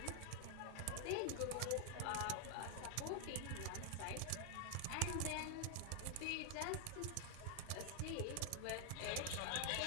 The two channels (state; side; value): different; both; correlation 0.00